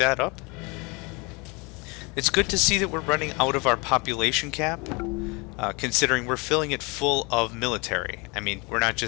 up. It's good to see that we're running out of our population cap, considering we're filling it full of military. I mean, we're not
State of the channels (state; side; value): quieter; right; 28.3 dB